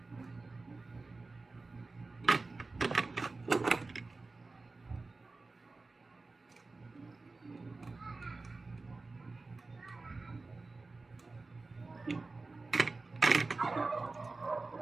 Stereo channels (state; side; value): quieter; left; 3.6 dB